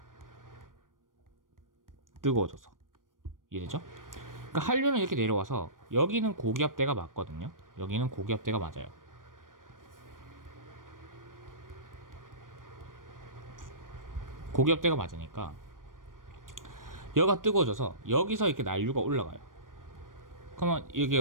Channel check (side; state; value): left; late; 0.90 ms